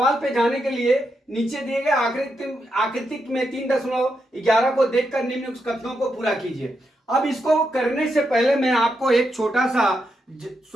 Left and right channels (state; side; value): normal; both; correlation 0.83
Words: पे जाने के लिए नीचे दिए गए आकृति में 3.11 को देखकर निम्न कथनों को पूरा कीजिए। अब इसको करने से पहले मैं आपको एक छोटा